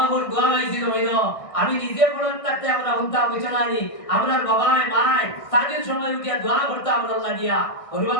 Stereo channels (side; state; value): right; late; 1.6 ms